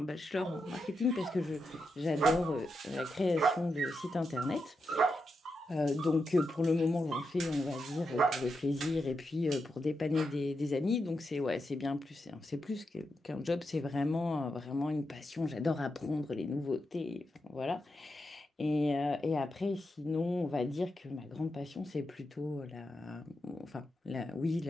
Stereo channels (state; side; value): normal; both; correlation 0.86